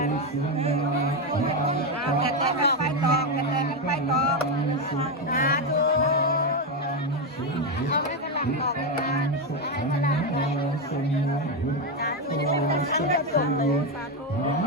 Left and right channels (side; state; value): both; normal; correlation 0.08